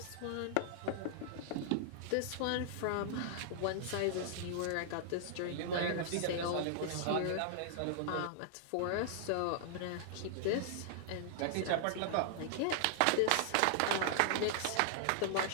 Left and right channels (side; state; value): both; different; correlation -0.01